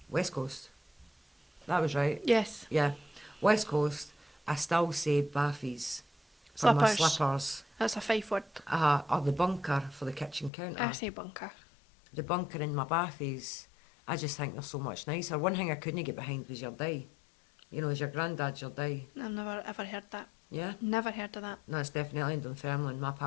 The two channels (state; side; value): drops out; right; at 10.5 s